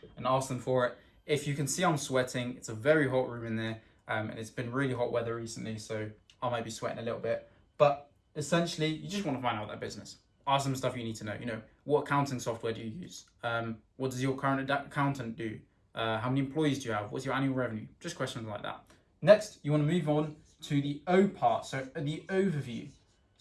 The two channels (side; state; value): both; identical; correlation 1.00